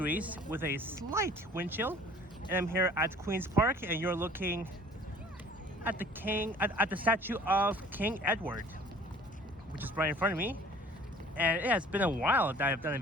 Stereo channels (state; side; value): normal; both; correlation 0.51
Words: with a slight wind chill. And I'm here at Queen's Park, and you're looking at the statue of King Edward, which is right in front of me. And it has been a while that I've done a